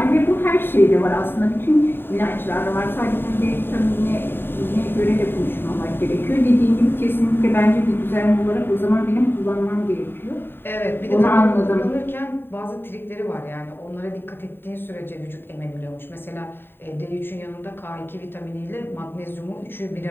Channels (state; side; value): late; right; 0.10 ms